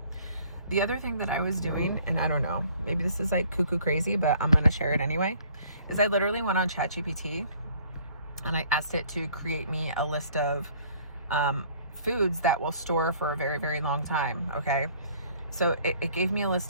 The other thing that I was doing, and I don't know, maybe this is like cuckoo crazy, but I'm going to share it anyway, is I literally went on ChatGPT and I asked it to create me a list of foods that will store for a very, very long time. Okay. So it gave me a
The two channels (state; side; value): inverted; both; correlation -0.57